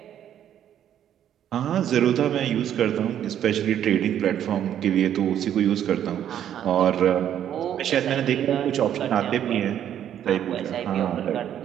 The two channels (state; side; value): quieter; left; 10.3 dB